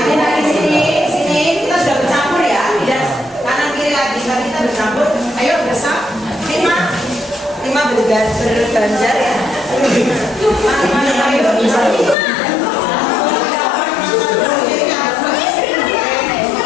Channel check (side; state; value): right; drops out; at 12.2 s